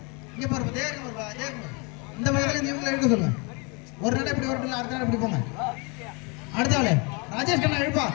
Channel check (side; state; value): right; quieter; 30.9 dB